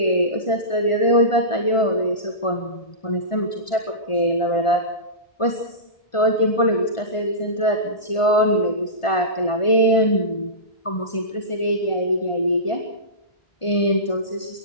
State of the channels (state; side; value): late; right; 1.5 ms